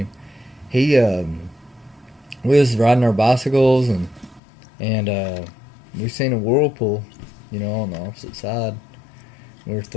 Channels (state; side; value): drops out; right; at 4.4 s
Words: He we was riding our bicycles and we seen a whirlpool, on the opposite side. We were